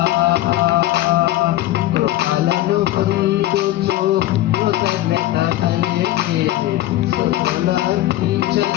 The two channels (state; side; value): quieter; right; 15.2 dB